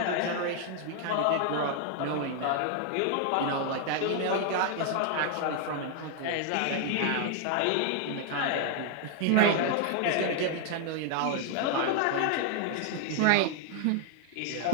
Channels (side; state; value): both; different; correlation 0.00